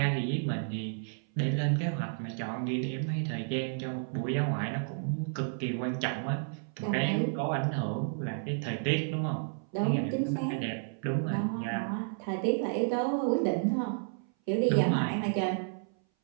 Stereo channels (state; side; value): silent; left; 57 dB below the other